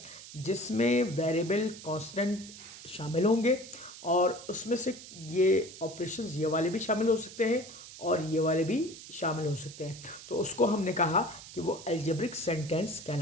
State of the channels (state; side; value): noise; right; hiss, 15 dB below the sound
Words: जिसमें वेरिएबल कांस्टेंट शामिल होंगे, और उसमें से ये ऑपरेशंस ये वाले भी शामिल हो सकते हैं और ये वाले भी शामिल हो सकते हैं। तो उसको हमने कहा कि वो अलजेब्रिक सेंटेंस